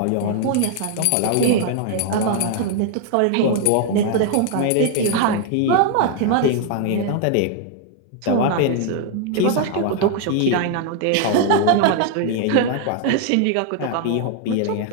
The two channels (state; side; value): different; both; correlation 0.00